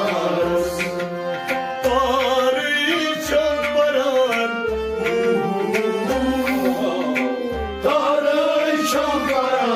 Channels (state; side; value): identical; both; correlation 1.00